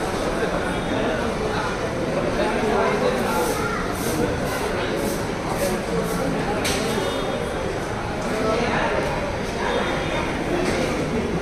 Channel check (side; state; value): both; identical; correlation 1.00